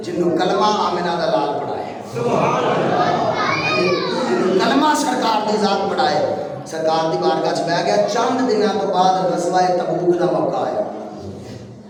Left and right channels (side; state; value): both; identical; correlation 1.00